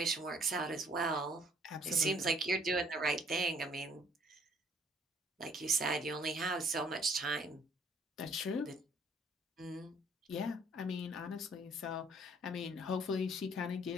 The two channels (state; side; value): normal; both; correlation 0.60